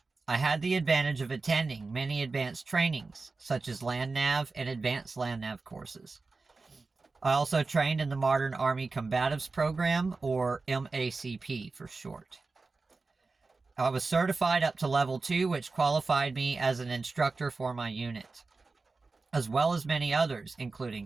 I had the advantage of attending many advanced trainings, such as Land Nav and Advanced Land Nav courses. I also trained in the Modern Army Combatives Program, or MACP for short. I was certified up to level 2, which qualified me as an instructor for my unit, as well as many others, including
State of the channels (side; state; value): left; quieter; 3.9 dB